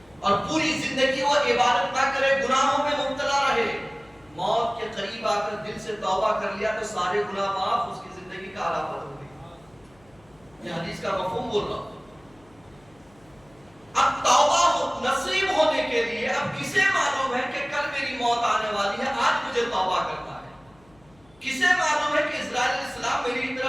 اور پوری زندگی وہ عبادت نہ کرے، گناہوں میں مبتلا رہے، موت کے قریب آ کر دل سے توبہ کر لیا تو سارے گناہ معاف، اس کی زندگی کا آلہ بدل گئی۔ یہ حدیث کا مفہوم بول رہا ہوں۔ اب توبہ نصیب ہونے کے لیے اب کسے معلوم ہے کہ کل میری موت آنے والی ہے، آج مجھے توبہ کرنا ہے؟ کسے معلوم ہے کہ اسرائیل علیہ السلام میری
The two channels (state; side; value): noise; left; hum, 30 dB below the sound